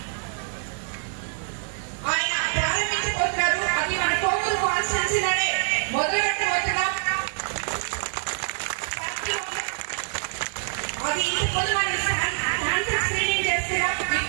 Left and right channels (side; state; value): left; silent; 61 dB below the other